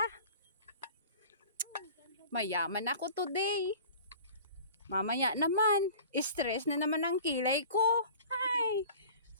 Mayaman ako today. Mamaya naman, stress na naman ang kilay ko. Ay.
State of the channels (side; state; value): both; inverted; correlation -0.43